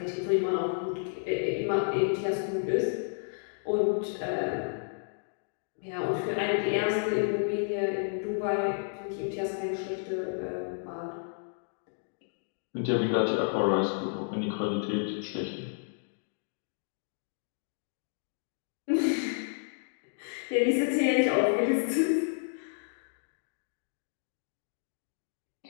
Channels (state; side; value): silent; right; digital silence